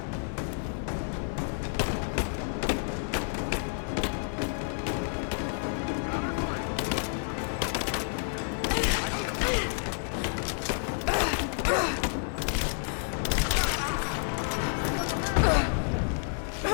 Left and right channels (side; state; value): right; silent; 58 dB below the other